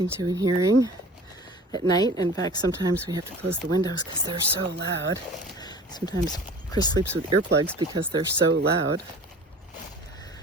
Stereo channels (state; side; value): normal; both; correlation 0.42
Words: to and hearing at night. In fact, sometimes we have to close the windows because they're so loud. Sometimes Chris sleeps with earplugs because they're so loud.